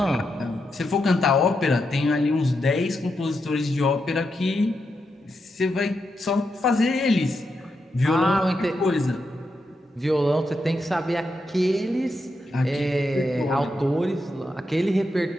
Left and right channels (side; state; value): both; normal; correlation 0.84